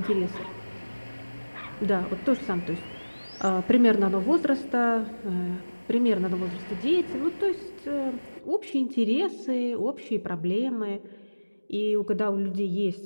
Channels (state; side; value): inverted; both; correlation -1.00